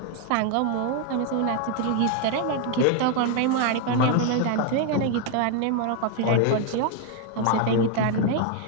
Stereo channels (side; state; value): both; different; correlation 0.01